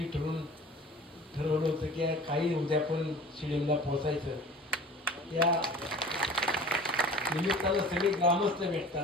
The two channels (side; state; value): both; normal; correlation 0.43